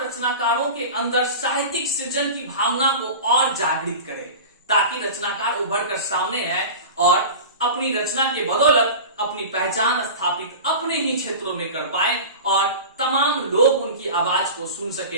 के अंदर साहित्यिक सृजन की भावना को और जागृत करे ताकि रचनाकार उभर कर सामने आए और अपनी रचना के बदौलत अपनी पहचान स्थापित अपने ही क्षेत्रों में कर पाए और तमाम लोग उनकी आवाज को सुन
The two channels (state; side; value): inverted; both; correlation -0.32